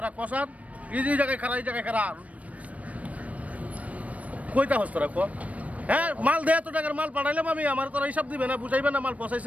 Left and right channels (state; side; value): late; left; 0.068 ms